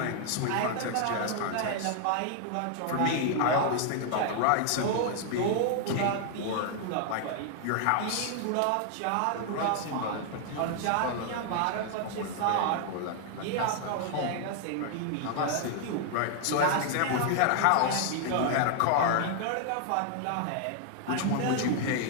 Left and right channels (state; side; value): different; both; correlation 0.00